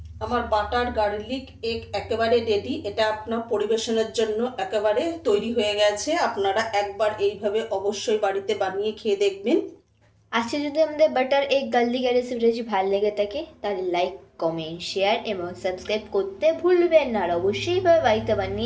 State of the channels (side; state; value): both; identical; correlation 1.00